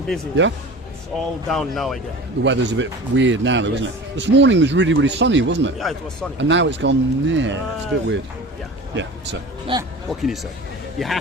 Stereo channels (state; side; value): normal; both; correlation 0.37